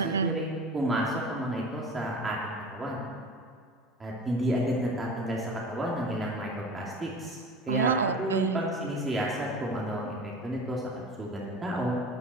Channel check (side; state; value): both; normal; correlation 0.36